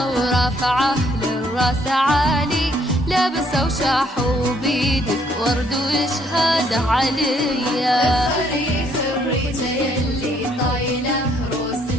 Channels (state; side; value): normal; both; correlation 0.67